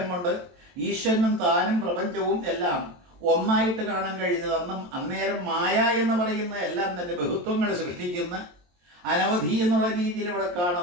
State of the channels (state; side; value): late; left; 23 ms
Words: കൊണ്ട് ഈശ്വരനും താനും പ്രപഞ്ചവും എല്ലാം ഒന്നായിട്ട് കാണാൻ കഴിഞ്ഞത്. അന്നേരം മായ എന്ന് പറയുന്ന എല്ലാം തന്നെ ബഹുത്വങ്ങൾ സൃഷ്ടിക്കുന്ന, അനവധി എന്നുള്ള രീതിയിൽ ഇവിടെ